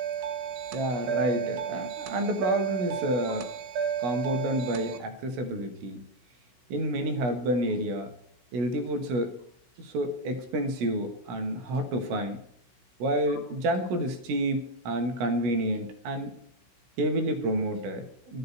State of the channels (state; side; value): late; left; 16 ms